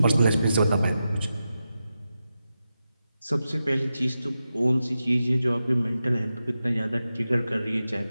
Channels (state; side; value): inverted; both; correlation -0.91